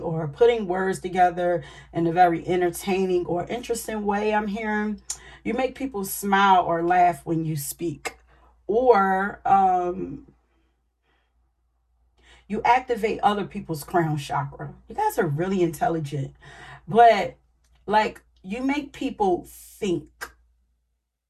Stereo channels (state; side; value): identical; both; correlation 1.00